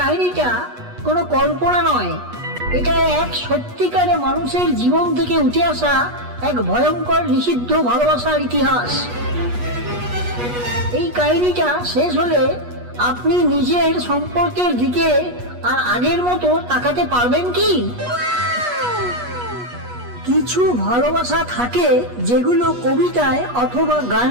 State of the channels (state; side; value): late; left; 8.3 ms